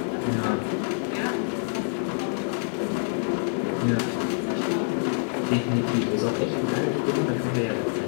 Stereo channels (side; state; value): right; silent; 61 dB below the other